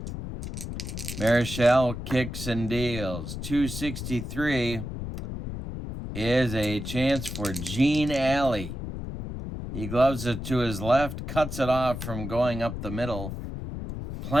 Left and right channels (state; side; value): noise; left; rumble, 7 dB below the sound